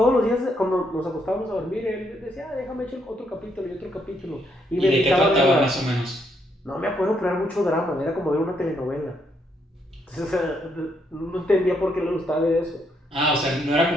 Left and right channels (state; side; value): normal; both; correlation 0.75